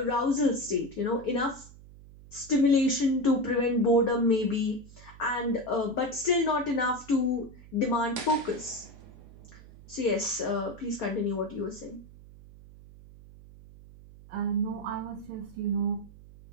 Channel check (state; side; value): noise; right; hum, 20 dB below the sound